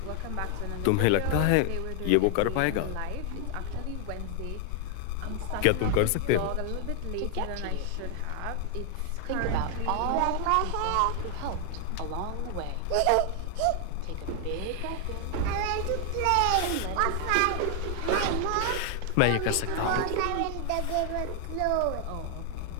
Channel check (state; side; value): different; both; correlation 0.00